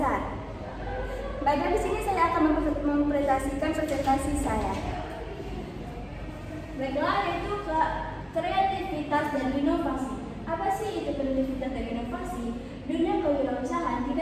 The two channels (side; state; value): both; identical; correlation 1.00